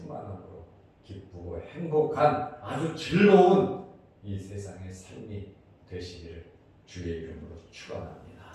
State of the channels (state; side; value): identical; both; correlation 1.00